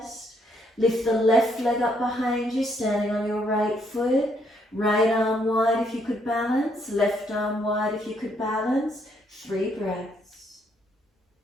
Lift the left leg up behind you, standing on your right foot. Right arm wide if you could balance, left arm wide if you could balance. 3 breaths.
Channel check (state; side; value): normal; both; correlation 0.71